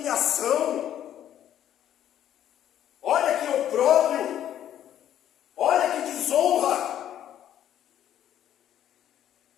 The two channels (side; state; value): right; quieter; 11.0 dB